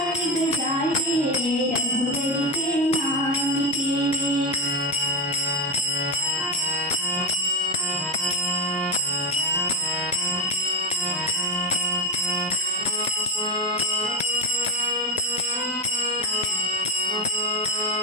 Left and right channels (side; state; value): both; normal; correlation 0.13